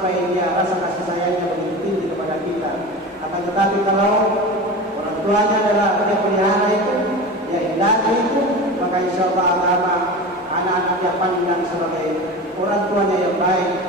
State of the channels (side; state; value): both; normal; correlation 0.30